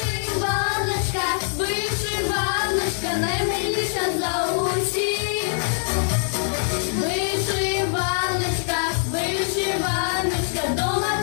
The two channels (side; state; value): right; silent; digital silence